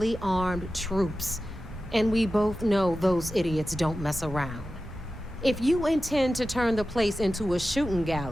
armed troops. And we both know those idiots don't mess around. If you intend to turn the place into a shooting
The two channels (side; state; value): both; normal; correlation 0.94